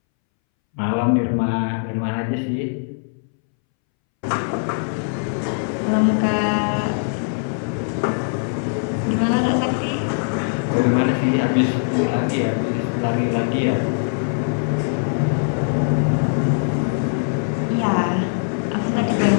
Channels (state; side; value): silent; right; 64 dB below the other